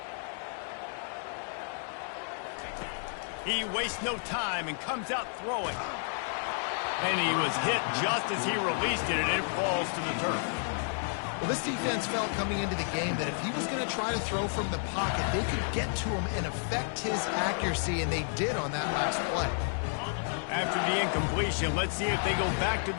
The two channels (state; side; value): silent; right; 57 dB below the other